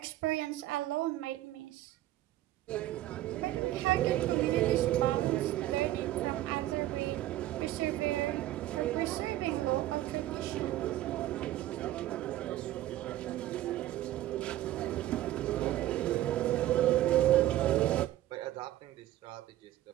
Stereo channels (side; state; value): left; quieter; 14.4 dB